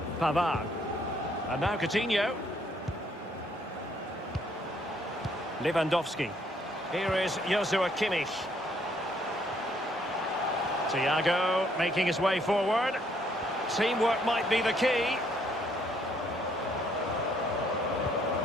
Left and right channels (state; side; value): normal; both; correlation 0.67